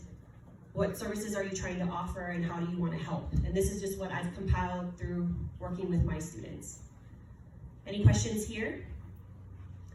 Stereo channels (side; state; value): both; identical; correlation 1.00